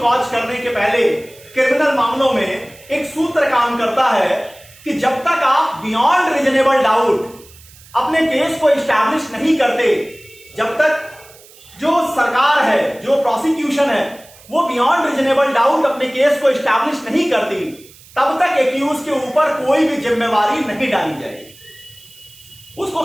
करने के पहले क्रिमिनल मामलों में एक सूत्र काम करता है कि जब तक आप बियॉन्ड रीजनेबल डाउट अपने केस को इस्टैब्लिश नहीं करते, जब तक जो सरकार है, जो प्रोसिक्यूशन है, वो बियॉन्ड रीजनेबल डाउट अपने केस को इस्टैब्लिश नहीं करती, तब तक एक्यूज के ऊपर कोई भी जिम्मेवारी नहीं डाली जाएगी, उसको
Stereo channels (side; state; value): right; noise; hiss, 23 dB below the sound